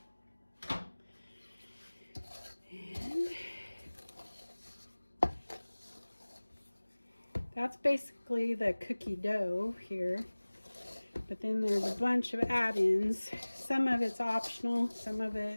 And that's basically the cookie dough here. But then there's a bunch of add-ins. Some of it's optional, some of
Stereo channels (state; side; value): inverted; both; correlation -1.00